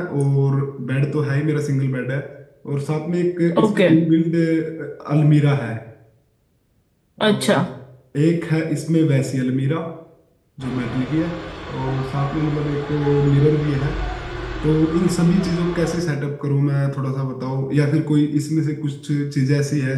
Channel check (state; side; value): identical; both; correlation 1.00